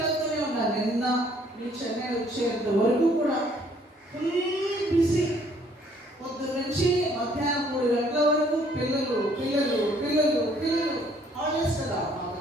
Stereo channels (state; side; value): normal; both; correlation 0.62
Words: ఉన్నాను. నిన్న నేను చెన్నై వచ్చేంత వరకు కూడా ఫుల్ బిజీ. పొద్దున్న నుంచి మధ్యాహ్నం 3 గంటల వరకు పిల్లలు పిల్లలు పిల్లలు పిల్లలు. హాలిడేస్ కదా మాకు